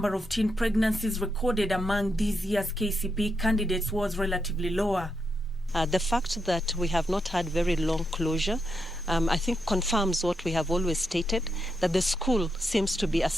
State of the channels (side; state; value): both; normal; correlation 0.83